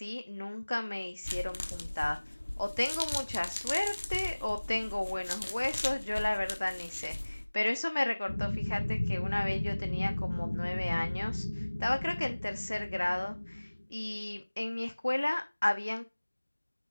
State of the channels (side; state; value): both; inverted; correlation -1.00